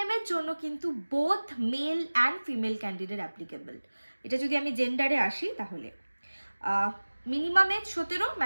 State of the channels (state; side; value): inverted; both; correlation -1.00